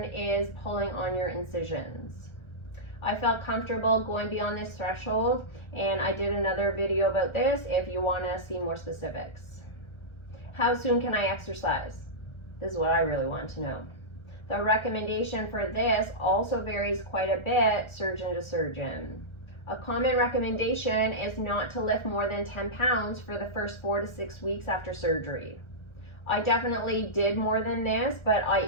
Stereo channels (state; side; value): late; right; 1.3 ms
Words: is pulling on your incisions. I felt comfortable going beyond this threshold, and I did another video about this if you want to see more specifics. How soon can I exercise? This is what I really want to know. The recommendation for this also varies quite a bit surgeon to surgeon. A common recommendation is not to lift more than 10 pounds for the first 4 to 6 weeks after surgery. I definitely did more than this, but I